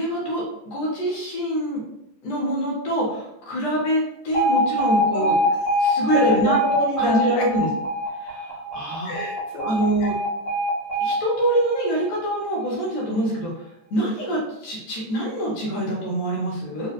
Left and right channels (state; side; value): late; right; 14 ms